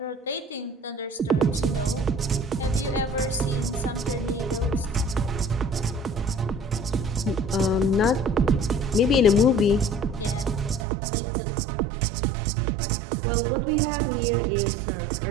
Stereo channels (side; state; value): left; drops out; at 10.9 s